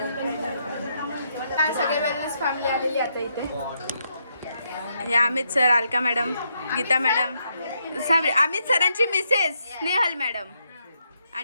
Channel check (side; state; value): both; inverted; correlation -0.78